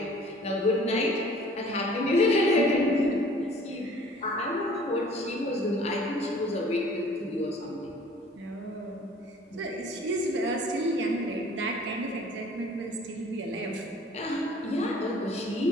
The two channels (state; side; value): normal; both; correlation 0.52